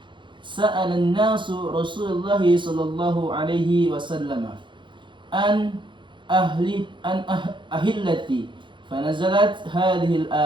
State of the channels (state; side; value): late; left; 0.23 ms